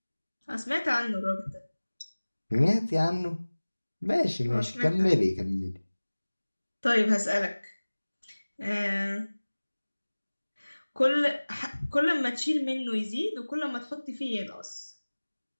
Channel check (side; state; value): both; inverted; correlation -1.00